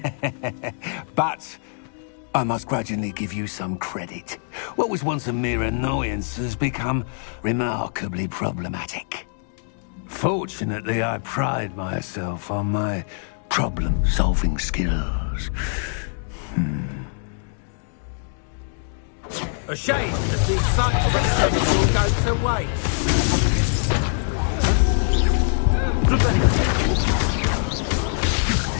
But I must grudgingly give you some credit. What was once a mere annoyance has become remarkably problematic. Fortunately, I pride myself on my problem-solving skills. A shame that the excitement will go to waste.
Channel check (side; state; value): right; silent; digital silence